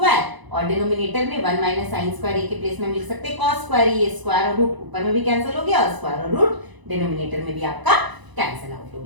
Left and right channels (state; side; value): late; left; 1.0 ms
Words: और डिनोमिनेटर में 1 माइनस साइन स्क्वायर ए के प्लेस में हम लिख सकते हैं कॉस स्क्वायर ए, स्क्वायर और रूट ऊपर में भी कैंसिल हो गया, और स्क्वायर और रूट डिनोमिनेटर में भी आपका कैंसिल आउट हो